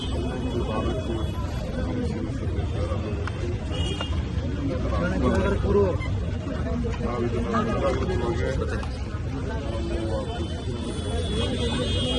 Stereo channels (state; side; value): identical; both; correlation 1.00